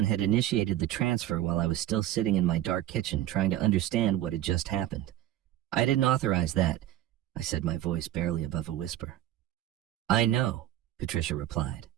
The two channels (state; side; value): quieter; left; 13.1 dB